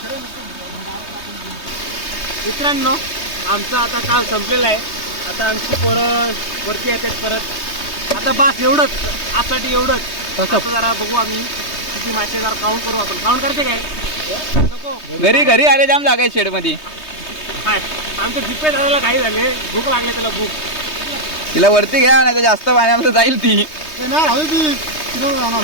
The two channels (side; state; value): right; late; 3.2 ms